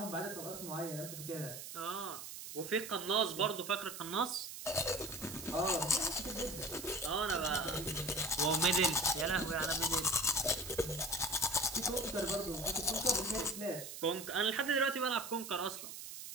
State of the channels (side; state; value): right; noise; hiss, 10 dB below the sound